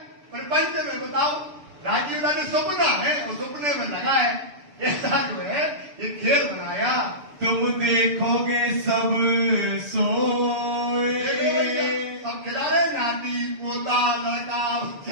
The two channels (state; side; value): late; left; 6.9 ms